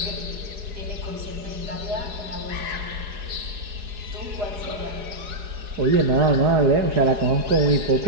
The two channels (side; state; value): left; late; 4.8 ms